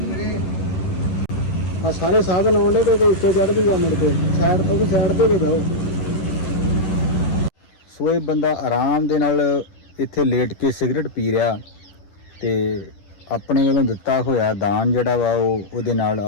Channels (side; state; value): right; late; 10 ms